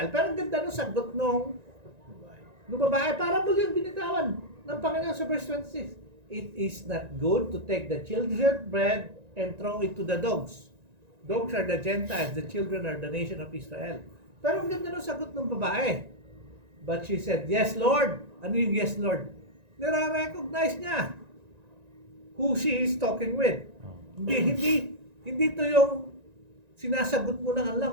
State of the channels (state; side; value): late; left; 1.9 ms